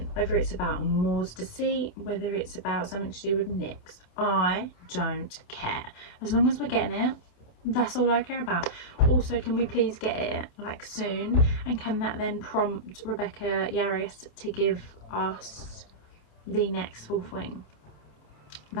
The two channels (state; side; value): late; right; 28 ms